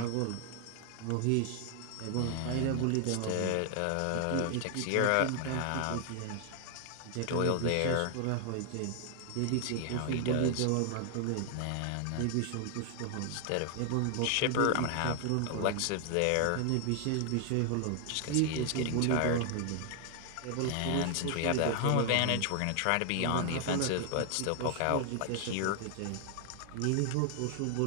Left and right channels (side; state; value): both; different; correlation 0.00